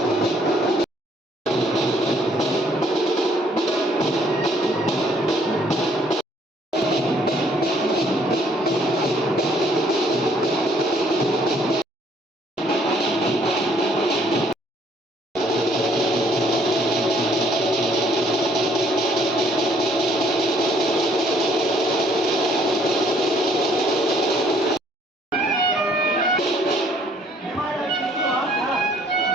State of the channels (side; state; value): both; normal; correlation 0.63